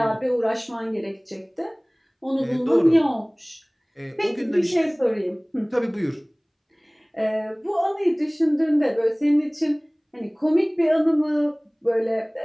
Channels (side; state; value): both; identical; correlation 1.00